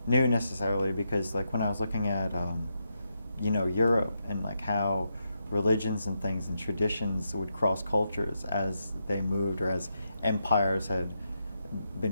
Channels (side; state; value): both; inverted; correlation -0.83